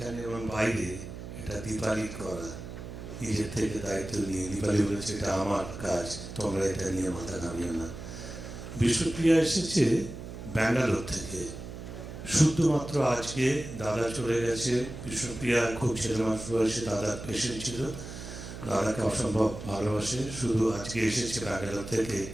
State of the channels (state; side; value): noise; right; hum, 10 dB below the sound